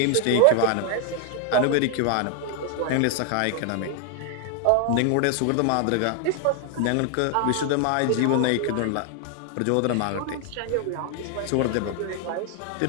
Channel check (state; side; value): different; both; correlation 0.00